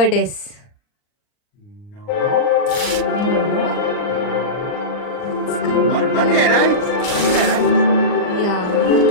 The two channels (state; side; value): late; right; 39 ms